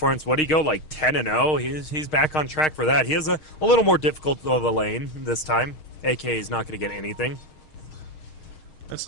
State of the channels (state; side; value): late; right; 6.4 ms